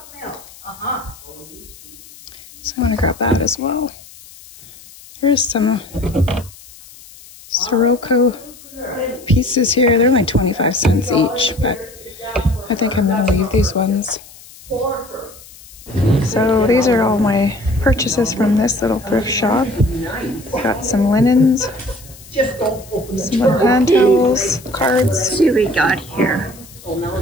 So I want to grab that as well. There's some Sirocco pieces here. They're like 25 cents each, but I think I'm going to leave these ones. So these are all my purchases from this little thrift shop. Got some linens, some little hand towels, cards. Let's see what we got here.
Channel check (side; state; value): left; noise; hiss, 21 dB below the sound